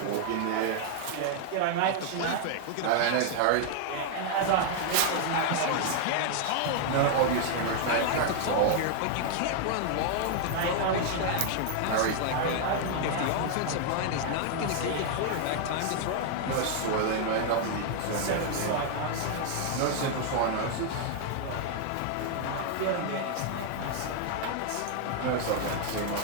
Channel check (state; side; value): different; both; correlation 0.00